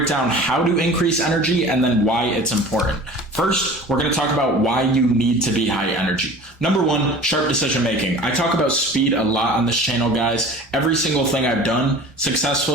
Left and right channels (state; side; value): normal; both; correlation 0.41